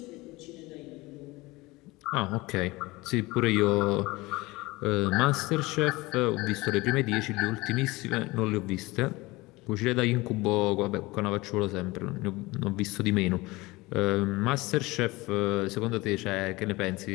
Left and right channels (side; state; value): right; quieter; 21.7 dB